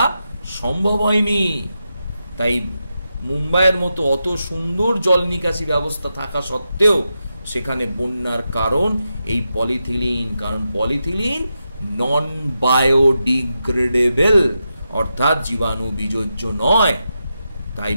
সম্ভব হয়নি। তাই মুম্বাইয়ের মতো অত সুন্দর জল নিকাশি ব্যবস্থা থাকা সত্ত্বেও সেখানে বন্যার কারণ এই পলিথিলিন। কারণ পলিথিলিন নন বায়োডিগ্রেডেবল, অর্থাৎ জীবাণু বিযোজ্য নয়। তাই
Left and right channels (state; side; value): inverted; both; correlation -0.88